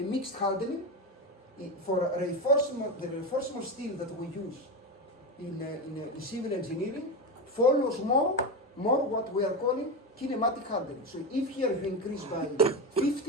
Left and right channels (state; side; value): normal; both; correlation 0.17